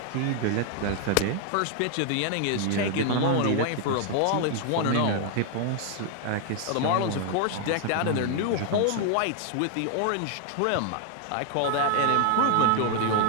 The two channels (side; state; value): both; different; correlation 0.00